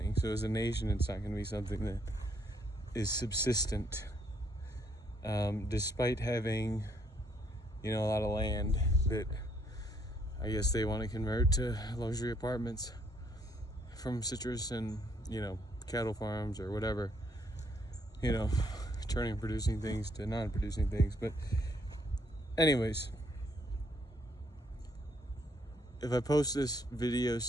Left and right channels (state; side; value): normal; both; correlation 0.70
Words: So as a nation, it's not going to be something that is subsistent, despite having, a lot of land that I guess they want to convert to luxury apartments from citrus and, cattle farms or whatever, turning producing things to non-producing things. But anyways, if I post this video,